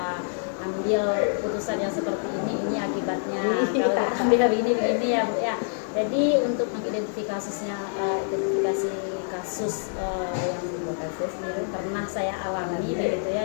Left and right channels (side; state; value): right; silent; digital silence